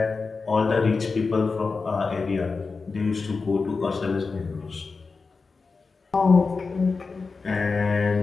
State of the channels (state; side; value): quieter; right; 4.4 dB